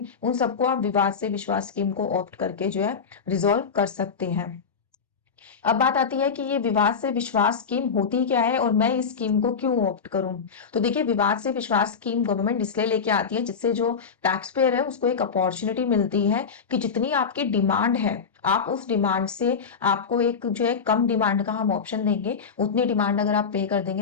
उन सबको आप विवाद से विश्वास स्कीम को ऑप्ट करके जो है रिजॉल्व कर सकते हैं। अब बात आती है कि ये विवाद से विश्वास स्कीम होती क्या है और मैं इस स्कीम को क्यों ऑप्ट करूं। तो देखिए, विवाद से विश्वास स्कीम गवर्नमेंट इसलिए लेके आती है जिससे जो टैक्स पेयर है उसको एक अपॉर्चुनिटी मिलती है कि जितनी आपकी डिमांड है आप उस डिमांड से, आपको एक जो है कम डिमांड का हम ऑप्शन देंगे, उतनी डिमांड अगर आप पे कर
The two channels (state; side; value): quieter; right; 5.9 dB